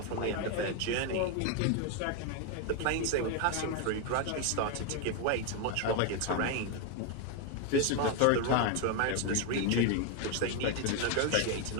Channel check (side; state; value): both; different; correlation 0.01